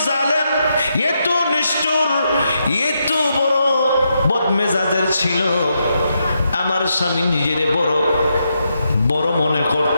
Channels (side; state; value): both; inverted; correlation -0.82